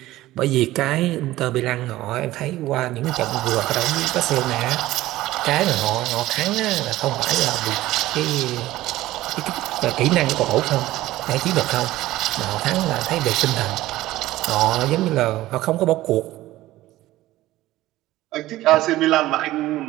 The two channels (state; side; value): quieter; left; 16.3 dB